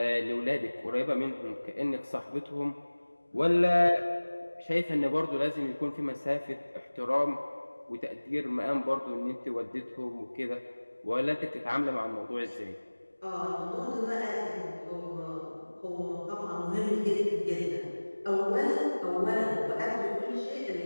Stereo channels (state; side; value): inverted; both; correlation -1.00